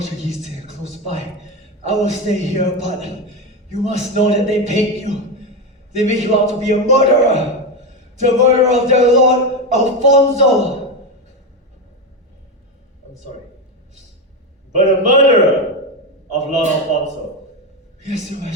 are close by. I will stay here, but you must know that they paint you. They make you out to be a murderer. The murderer of their lord, Afonso. I'm sorry. But a murderer of Lord Afonso. Yes, Your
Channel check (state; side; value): normal; both; correlation 0.13